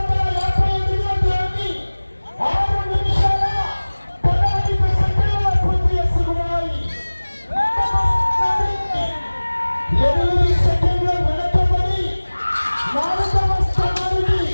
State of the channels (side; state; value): both; inverted; correlation -1.00